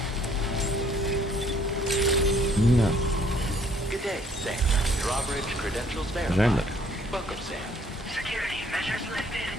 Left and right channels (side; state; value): both; normal; correlation 0.62